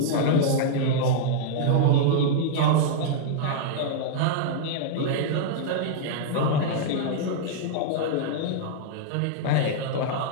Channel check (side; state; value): both; different; correlation -0.01